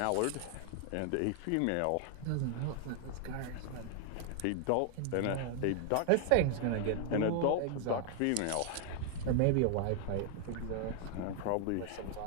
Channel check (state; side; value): different; both; correlation 0.00